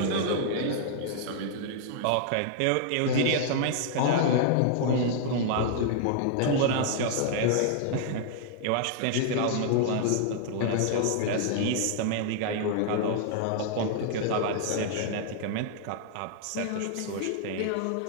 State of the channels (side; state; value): both; different; correlation -0.01